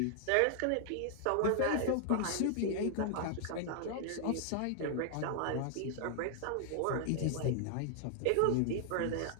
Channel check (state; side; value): different; both; correlation 0.00